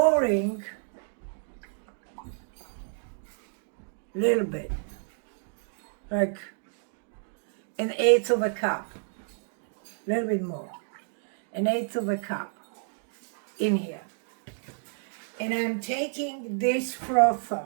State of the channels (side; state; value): left; silent; digital silence